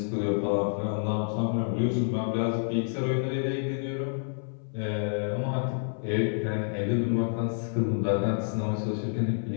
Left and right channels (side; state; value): right; silent; 59 dB below the other